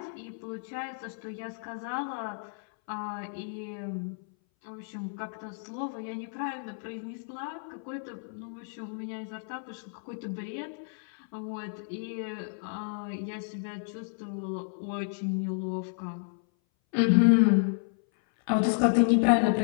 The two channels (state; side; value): silent; right; 57 dB below the other